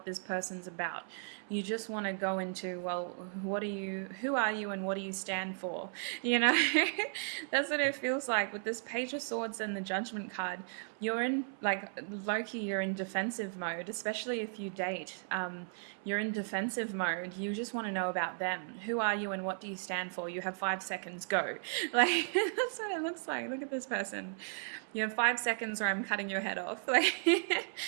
this person's about. You just want to go into, well, who are you and what do you stand for? You know, that's what it feels like with this Page of Swords and the Judgment card. You're in, like, Loki, you're in defensive mode, especially if you date. You're in defensive mode. You just want to know about them. Who are you and what do you stand for? You have 5 seconds, go. Like, that's what it looks like. Look at this person. You have 5 seconds or I'm cutting your head off. Like,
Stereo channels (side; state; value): left; silent; 54 dB below the other